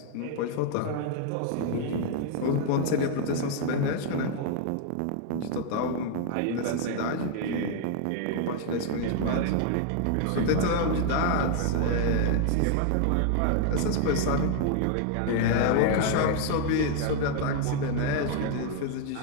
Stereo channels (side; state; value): both; different; correlation 0.00